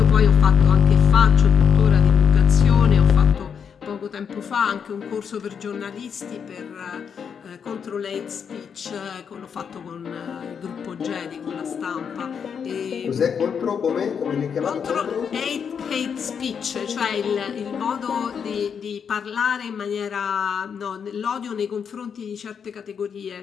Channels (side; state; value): right; quieter; 7.0 dB